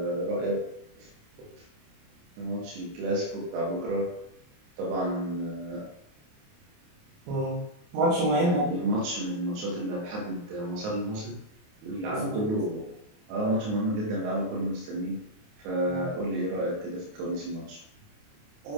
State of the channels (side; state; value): left; late; 28 ms